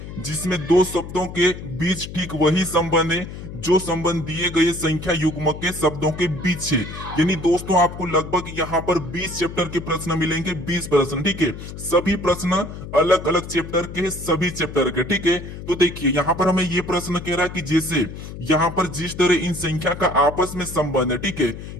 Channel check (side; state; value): left; noise; hum, 11 dB below the sound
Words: जिसमें दो शब्दों के बीच ठीक वही संबंध है जो संबंध दिए गए संख्या युग्म के शब्दों के बीच है। यानी दोस्तों आपको लगभग यहाँ पर 20 चैप्टर के प्रश्न मिलेंगे, 20 प्रश्न। ठीक है, सभी प्रश्न अलग अलग चैप्टर के, सभी चैप्टर के। ठीक है, तो देखिए यहाँ पर हमें ये प्रश्न कह रहा है कि जैसे यहाँ पर जिस तरह इन संख्या का आपस में संबंध है, ठीक है,